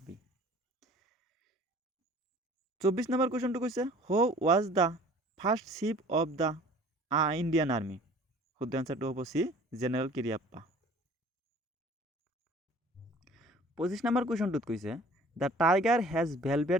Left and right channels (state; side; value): normal; both; correlation 0.49